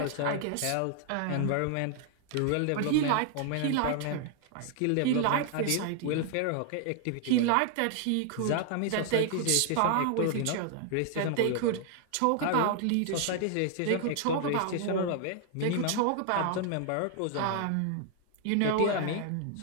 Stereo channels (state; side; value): different; both; correlation 0.00